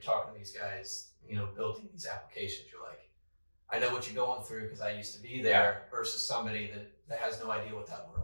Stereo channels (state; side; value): inverted; both; correlation -1.00